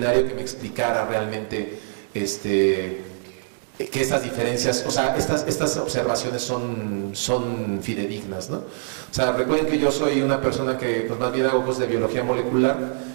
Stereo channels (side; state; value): left; silent; digital silence